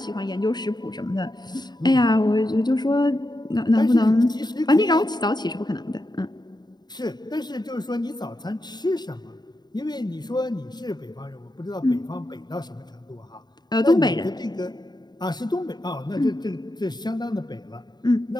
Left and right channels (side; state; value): right; late; 0.20 ms